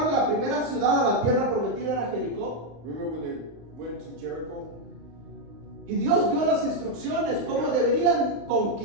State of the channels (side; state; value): left; late; 35 ms